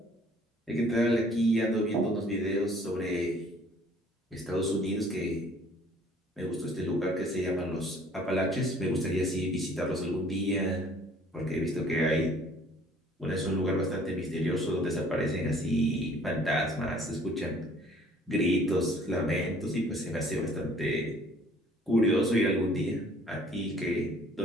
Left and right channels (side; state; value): both; normal; correlation 0.56